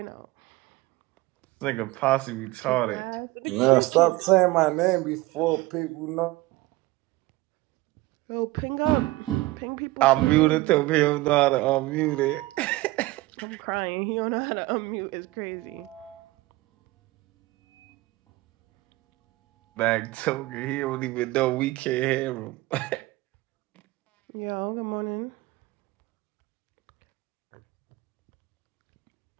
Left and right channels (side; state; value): left; quieter; 19.8 dB